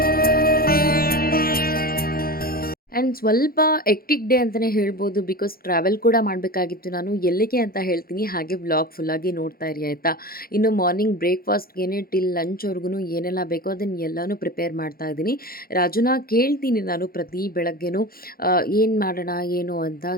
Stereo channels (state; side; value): late; right; 0.43 ms